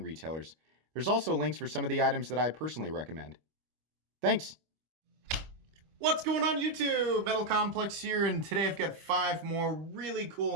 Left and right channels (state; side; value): late; left; 25 ms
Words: retailers. There's also links for some of the items that I personally recommend. Thanks! What's going on YouTube? Metal Complex here, and today I've got 5 more really